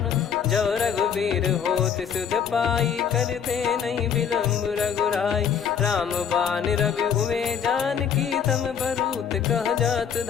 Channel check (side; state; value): right; quieter; 7.6 dB